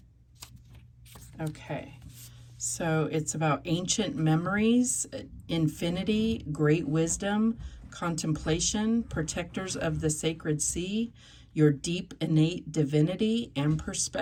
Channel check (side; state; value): both; identical; correlation 1.00